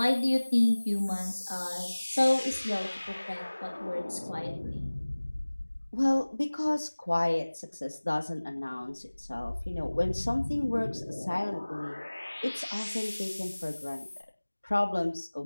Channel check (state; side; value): inverted; both; correlation -1.00